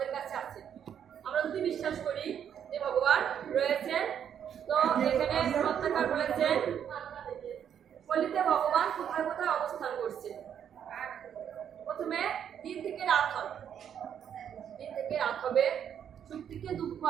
কাছে আছে। আমরা যদি বিশ্বাস করি যে ভগবান রয়েছেন, তো এখানে সত্যাকার বলেছেন কলিতে ভগবান কোথায় কোথায় অবস্থান করছে। প্রথমে দিন থেকে রাত হবে, দিন থেকে রাত হবে, সুখ থেকে দুঃখ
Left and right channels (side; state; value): left; quieter; 8.8 dB